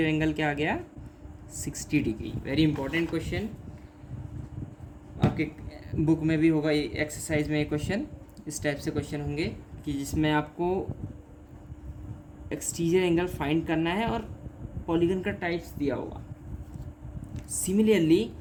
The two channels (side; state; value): both; identical; correlation 1.00